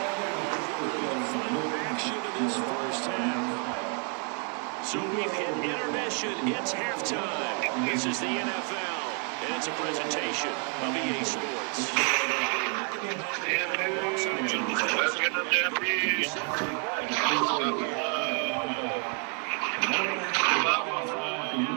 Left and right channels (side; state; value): left; quieter; 39.8 dB